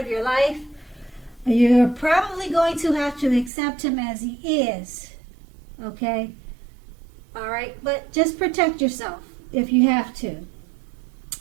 your life, you're probably going to have to accept him as he is. Okay? Alright? But just protect yourself if you have to.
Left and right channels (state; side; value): drops out; left; at 3.5 s